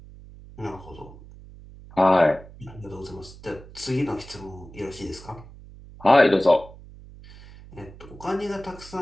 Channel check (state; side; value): noise; right; hum, 19 dB below the sound